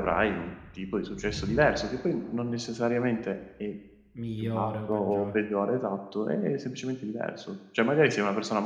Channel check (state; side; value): identical; both; correlation 1.00